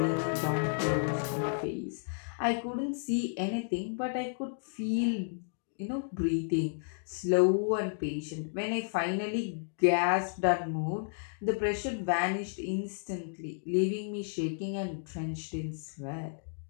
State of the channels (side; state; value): right; silent; digital silence